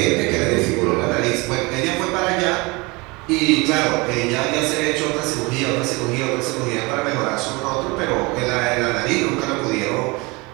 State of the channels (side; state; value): left; quieter; 25.8 dB